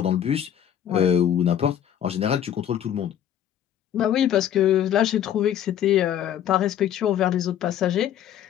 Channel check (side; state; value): right; quieter; 10.2 dB